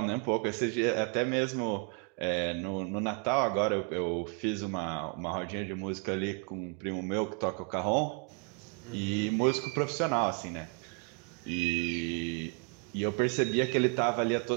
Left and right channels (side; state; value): left; quieter; 33.9 dB